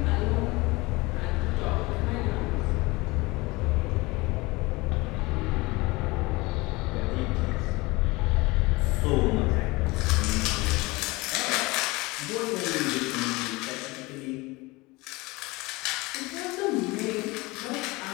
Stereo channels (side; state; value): right; quieter; 23.0 dB